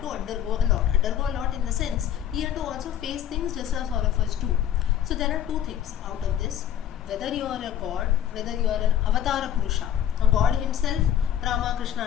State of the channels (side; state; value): right; quieter; 10.5 dB